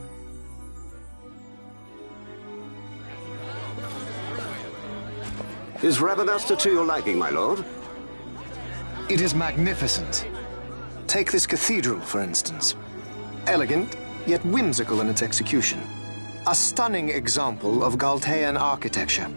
Is Rabanasta to your liking, my lord? It is magnificent. Take this cathedral, for instance. Elegant, yet whimsical in its execution. A stunning example of Galtean architecture.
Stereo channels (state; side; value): inverted; both; correlation -1.00